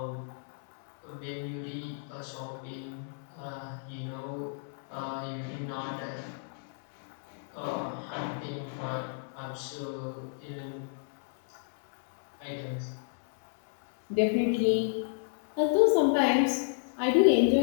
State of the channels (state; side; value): silent; right; 57 dB below the other